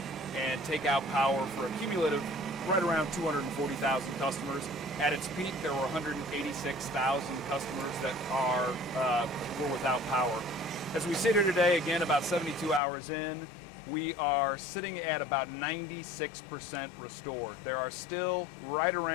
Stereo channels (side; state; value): right; drops out; at 12.8 s